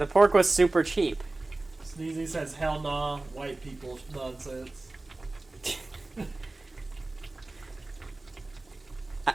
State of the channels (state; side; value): quieter; left; 3.0 dB